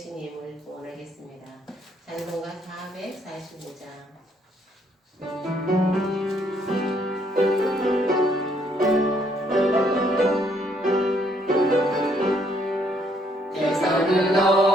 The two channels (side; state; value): both; normal; correlation 0.68